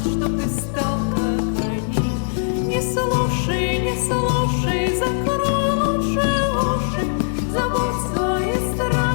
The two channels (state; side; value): silent; right; 55 dB below the other